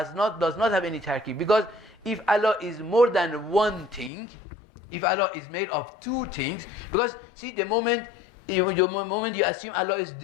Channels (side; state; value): right; drops out; at 4.1 s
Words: does not have any tarkib. Because if Allah is more than one thing, if Allah is made of two things, because see the moment you assume Allah is